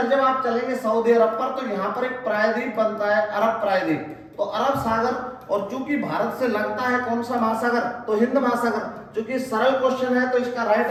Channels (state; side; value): identical; both; correlation 1.00